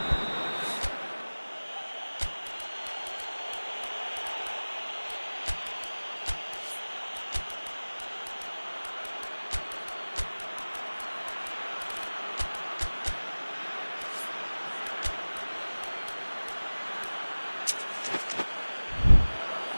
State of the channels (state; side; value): inverted; both; correlation -1.00